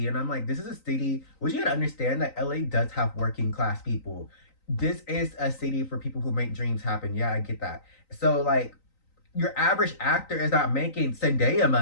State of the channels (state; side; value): late; right; 3.9 ms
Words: And I'm like, this is a city. Which you gotta understand that LA does have working class people. This is a city for people who make dreams happen. Yeah, I get that. So like, your average actor is not making Zendaya